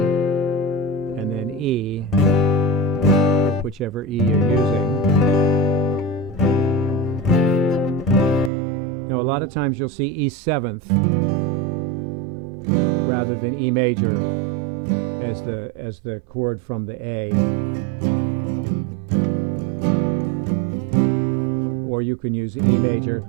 then E, whichever E you're using. Now a lot of times you'll see E 7th rather than E major as the chord from the A. Or you can use E major.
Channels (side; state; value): left; drops out; at 8.5 s